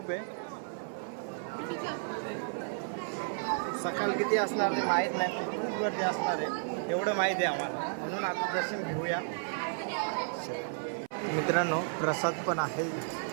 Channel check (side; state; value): left; silent; 56 dB below the other